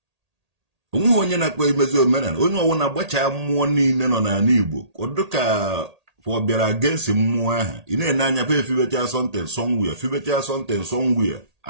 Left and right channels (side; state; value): left; late; 1.8 ms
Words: Onwe onye na-akpa imezi omenala onye ọwụ na-agbacha mmụọ niile nọ n'ala Igbo ọdụ ka ọ bịara against mmụọ ahụ ị na-ene anya pa efibecha something somewhere